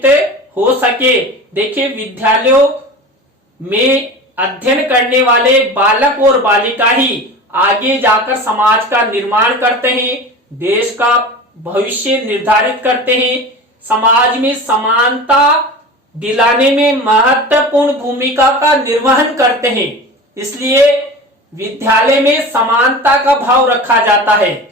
हो सके। देखिए, विद्यालयों में अध्ययन करने वाले बालक और बालिका ही आगे जाकर समाज का निर्माण करते हैं, देश का भविष्य निर्धारित करते हैं, समाज में समानता दिलाने में महत्वपूर्ण भूमिका का निर्वहन करते हैं। इसलिए विद्यालय में समानता का भाव रखा जाता है।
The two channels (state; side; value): normal; both; correlation 0.33